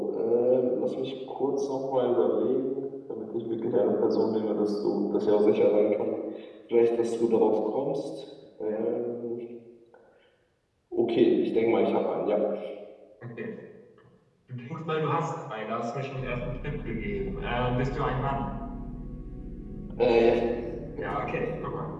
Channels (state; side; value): identical; both; correlation 1.00